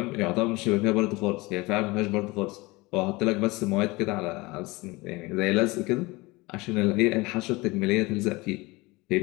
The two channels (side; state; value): right; quieter; 22.9 dB